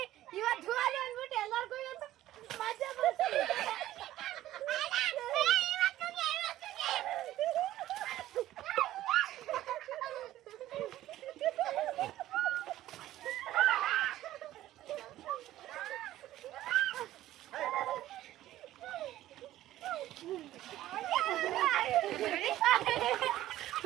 ಅಂದ್ಬಿಟ್ಟು ಎಲ್ಲರಿಗೂ ಇವತ್ತು ಮಜಾ ಬರ್ತಿದೆ.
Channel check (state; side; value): quieter; left; 14.2 dB